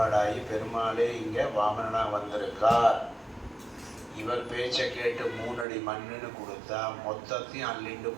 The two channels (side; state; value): left; drops out; at 5.7 s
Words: பெருமாளே இங்கே வாமனனாக வந்திருக்கார். இவர் பேச்சை கேட்டு 3 அடி மண்ணுன்னு கொடுத்தா மொத்தத்தையும் அள்ளிண்டு